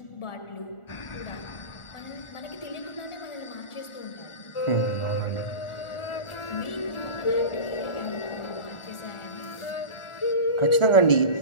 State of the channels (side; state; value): right; late; 1.4 ms